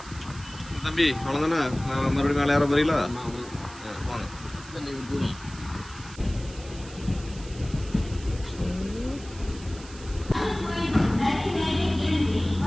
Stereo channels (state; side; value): noise; right; hiss, 18 dB below the sound